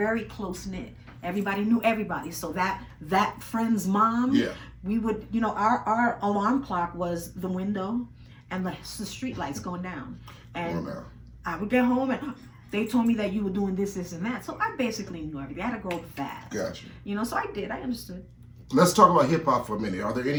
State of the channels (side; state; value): both; identical; correlation 1.00